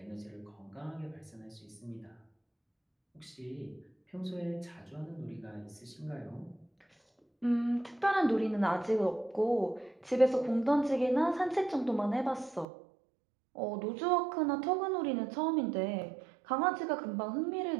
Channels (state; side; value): drops out; left; at 12.7 s